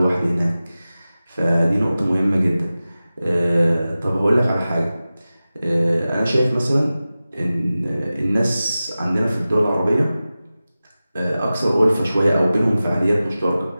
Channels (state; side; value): inverted; both; correlation -0.95